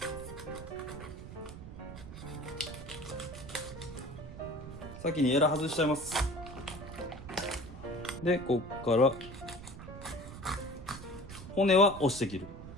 先にエラ外しちゃいます。で、こっから骨は押して切る。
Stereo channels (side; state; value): right; noise; rumble, 12 dB below the sound